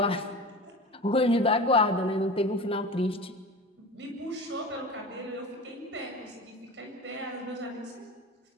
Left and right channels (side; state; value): both; normal; correlation 0.33